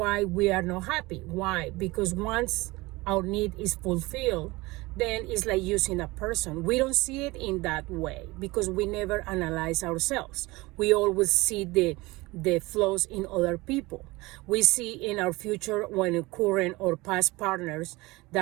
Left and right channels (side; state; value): left; quieter; 21.9 dB